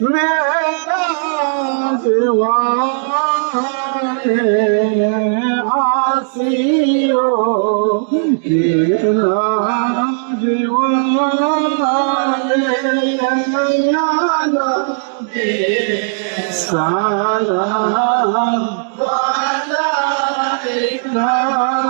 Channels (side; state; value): left; silent; digital silence